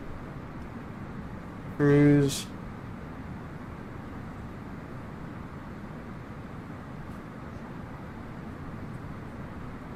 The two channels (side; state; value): both; identical; correlation 1.00